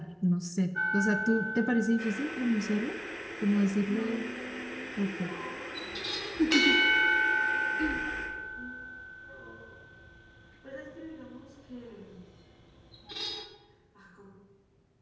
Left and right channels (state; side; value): identical; both; correlation 1.00